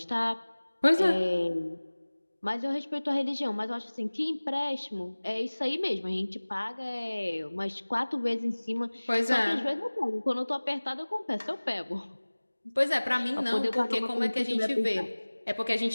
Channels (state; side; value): inverted; both; correlation -1.00